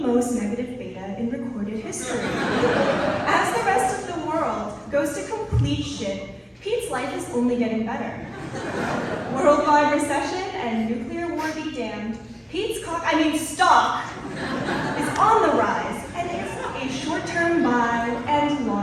most negative beta in recorded history. As the rest of the world goes to complete shit, Pete's life is only getting better. Worldwide recession and nuclear war be damned, Pete's stock is on the rise and is a short-term buy and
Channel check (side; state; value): both; identical; correlation 1.00